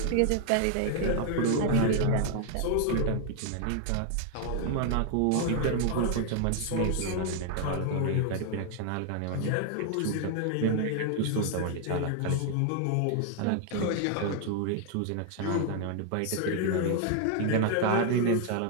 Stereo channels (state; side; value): different; both; correlation 0.00